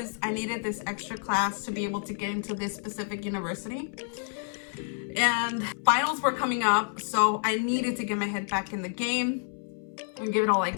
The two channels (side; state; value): right; silent; 59 dB below the other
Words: I needed this extra class to be able to get into this specific university. And finals were coming up, so I needed to get my head back in the game and give it all I